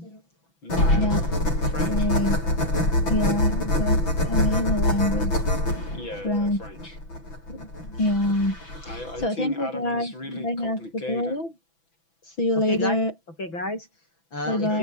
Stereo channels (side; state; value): right; late; 6.0 ms